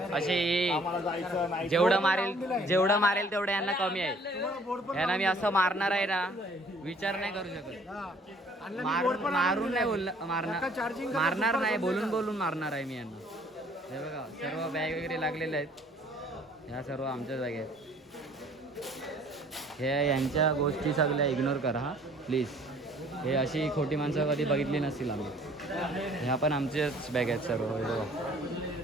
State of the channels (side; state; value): both; normal; correlation 0.57